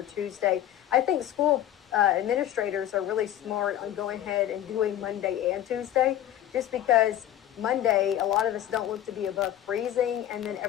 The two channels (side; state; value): right; quieter; 11.9 dB